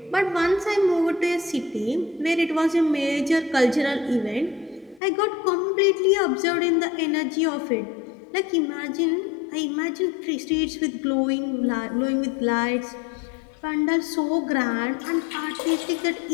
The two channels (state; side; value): drops out; right; at 5.0 s